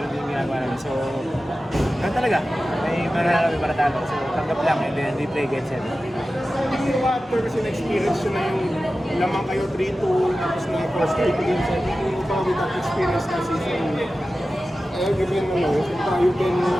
din yung ginagawa namin. So, ganoon talaga. May mananalo, may paratalo. So, tanggap lang and then we play game 7. Yung after kasi na-experience yun na yung lamang kayo 3-2 tapos na first kayo game 7. Yung ba with that experience na season you can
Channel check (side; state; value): both; normal; correlation 0.94